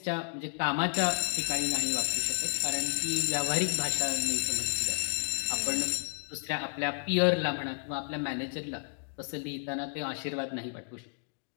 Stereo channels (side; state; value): right; silent; digital silence